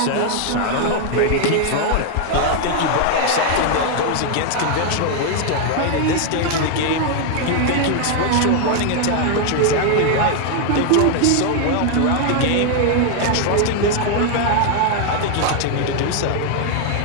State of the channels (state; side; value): different; both; correlation 0.01